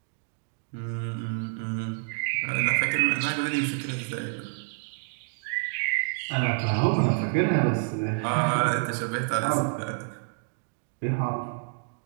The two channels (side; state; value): left; silent; 59 dB below the other